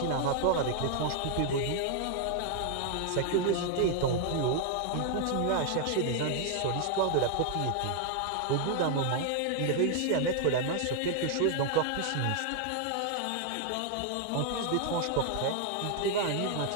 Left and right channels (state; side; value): different; both; correlation 0.00